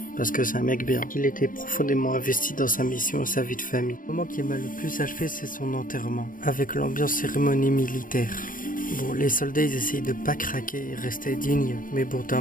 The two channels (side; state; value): right; late; 0.40 ms